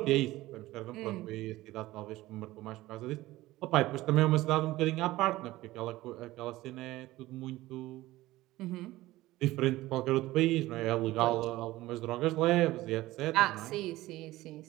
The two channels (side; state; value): left; quieter; 17.4 dB